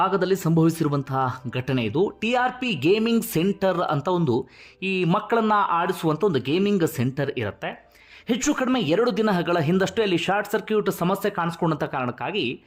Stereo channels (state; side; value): identical; both; correlation 1.00